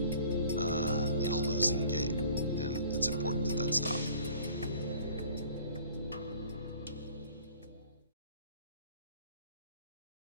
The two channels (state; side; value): inverted; both; correlation -0.51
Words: in a losing game, and it's important that that stops.